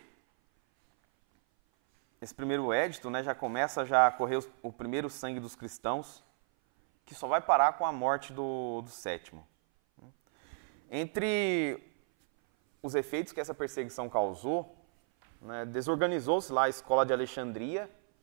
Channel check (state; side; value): silent; left; 56 dB below the other